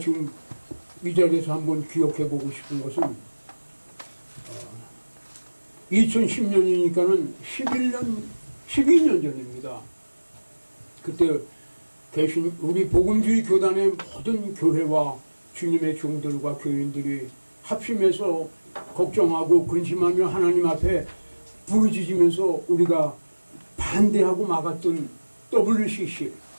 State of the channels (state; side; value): inverted; both; correlation -1.00